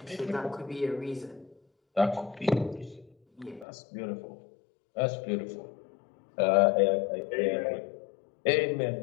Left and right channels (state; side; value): drops out; right; at 3.7 s